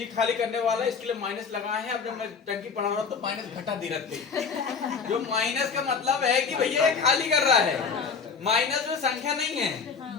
खाली करने वाला इसके लिए माइनस लगाए हैं अब जब मैं टंकी पढ़ा रहा हूँ तो माइनस घटा दे रहे थे जो माइनस का मतलब है कि भैया ये खाली कर रहा है माइनस में संख्या नहीं है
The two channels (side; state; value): right; quieter; 5.6 dB